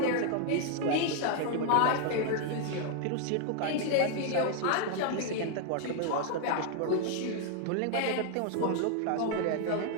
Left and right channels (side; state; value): both; different; correlation 0.00